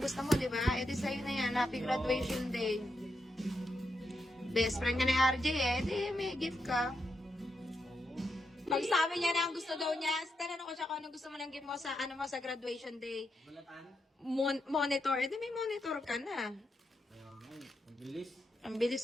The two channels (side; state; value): both; normal; correlation 0.84